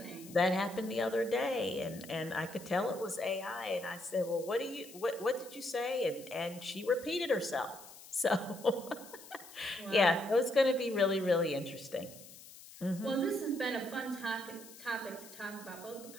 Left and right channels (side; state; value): left; noise; hiss, 18 dB below the sound